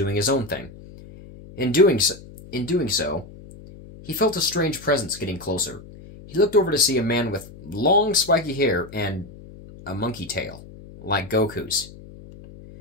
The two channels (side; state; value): left; noise; hum, 18 dB below the sound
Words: his own thing. In doing so, he felt a strange presence getting closer. He looked over to see a man with long, spiky hair and a monkey tail, like Goku's.